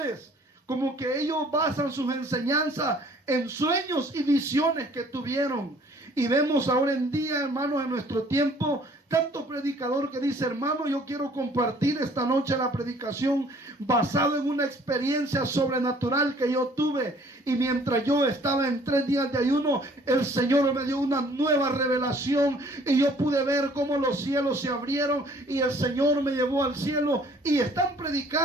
como que ellos basan sus enseñanzas en sueños y visiones que tuvieron. Y vemos ahora en día, hermanos, en nuestro tiempo, tanto predicador que dice, hermano, yo quiero compartir esta noche la predicación basado en una experiencia sobrenatural que yo tuve. Y mientras yo estaba en 3 días de ayuno, el Señor me dio una nueva revelación y yo pude ver cómo los cielos se abrieron y el Señor me llevó al cielo. Y están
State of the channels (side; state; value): both; normal; correlation 0.57